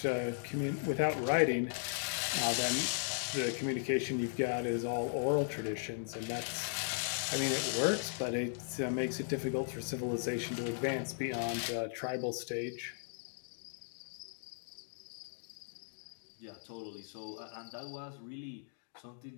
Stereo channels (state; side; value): silent; right; digital silence